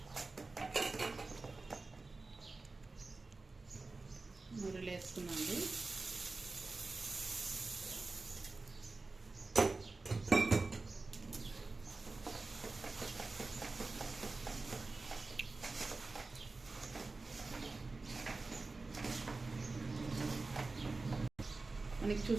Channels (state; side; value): quieter; left; 3.6 dB